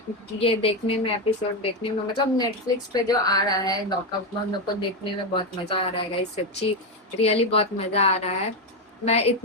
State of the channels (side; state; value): both; normal; correlation 0.10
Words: ये देखने में, एपिसोड देखने में, मतलब नेटफ्लिक्स पे जो आ रहा है लॉकअप, हम लोग को देखने में बहुत मजा आ रहा है गाइस, सच्ची रियली बहुत मजा आ रहा है। मैं